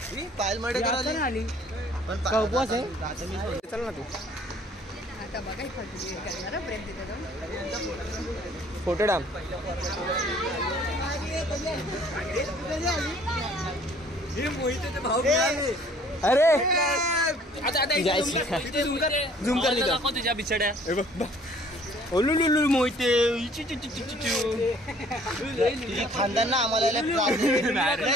पायल माडेकर आली पण उपवास आहे. चल ना तू. आता बघा प्रेम तिथे फोटो डाम. अरे झूम कर तुझ्या बिछड्या. मोहिते खानदान ना आम्हाला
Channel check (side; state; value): both; normal; correlation 0.56